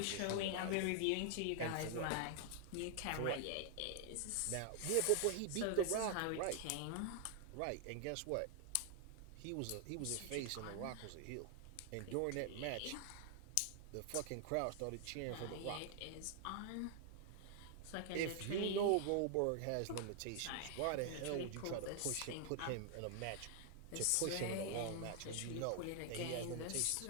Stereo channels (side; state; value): both; different; correlation 0.00